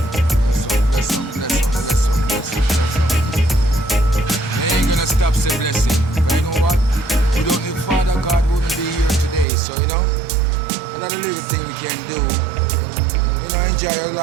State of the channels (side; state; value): left; drops out; at 9.5 s